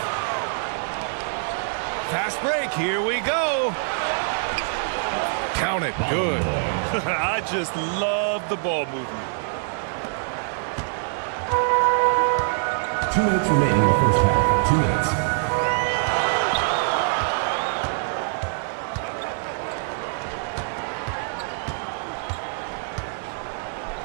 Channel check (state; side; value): silent; left; digital silence